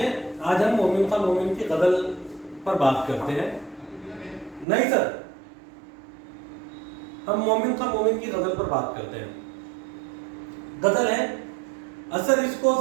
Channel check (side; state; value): left; drops out; at 4.7 s